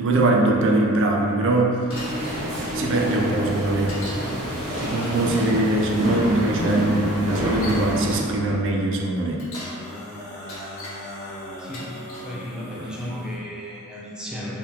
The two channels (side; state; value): both; normal; correlation 0.48